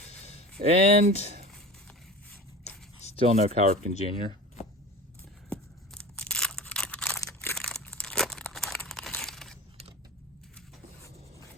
And still no Cal Ripken Jr.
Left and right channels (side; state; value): both; normal; correlation 0.34